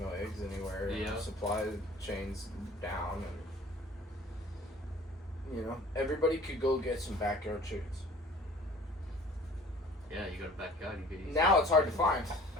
eggs anywhere. Yeah. And supply chains down, and everybody could go get some backyard chickens. Yeah, you got a backyard. You could eat. Now it's hard to find,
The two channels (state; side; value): normal; both; correlation 0.48